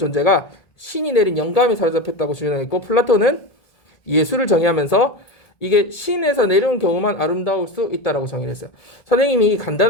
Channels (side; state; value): right; late; 1.8 ms